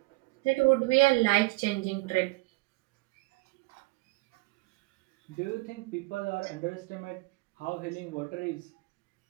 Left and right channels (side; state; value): left; quieter; 24.6 dB